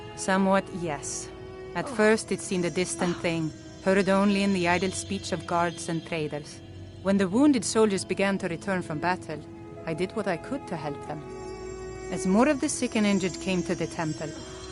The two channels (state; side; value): identical; both; correlation 1.00